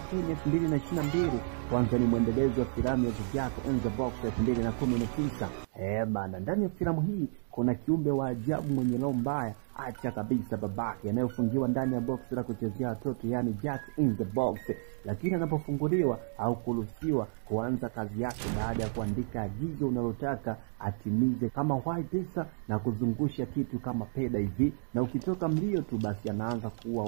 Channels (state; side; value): silent; left; digital silence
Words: 2022 kwanza ni mwendelezo wa filamu ya The Jack in the Box 2019. Bana, ndani ya filamu hii kuna kiumbe wa ajabu mwenye roho mbaya, acha kabisa babake, anayofungiwa ndani ya box la kuchezea watoto, yani Jack in the Box. Lakini anapofunguliwa au kuruhusiwa kuanza kazi yake baada ya kuandika agizo unalotaka atimize, kama wai pesa na kuzungusha kitu kama peda hivi, na ukitoka mlio tu basi anaanza kuua